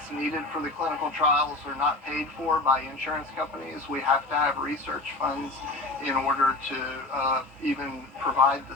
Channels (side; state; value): right; quieter; 3.1 dB